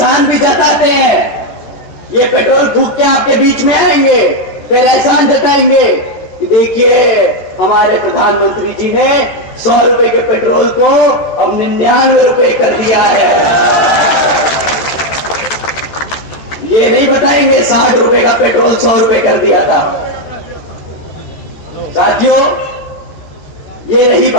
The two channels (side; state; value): right; late; 14 ms